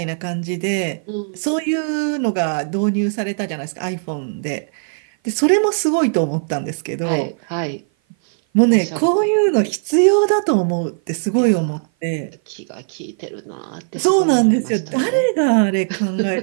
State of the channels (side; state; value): left; silent; 56 dB below the other